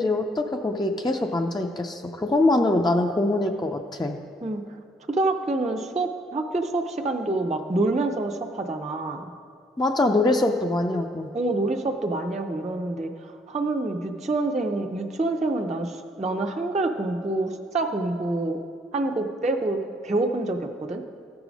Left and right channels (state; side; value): normal; both; correlation 0.67